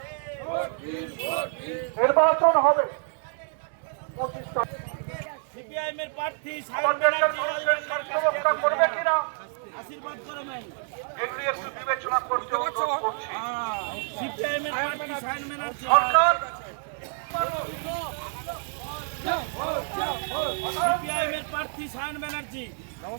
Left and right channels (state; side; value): silent; left; 55 dB below the other